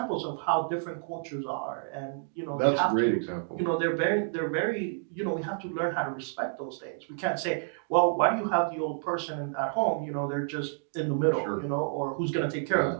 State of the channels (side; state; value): left; silent; digital silence